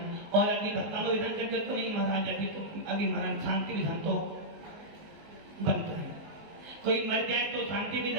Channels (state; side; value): late; left; 19 ms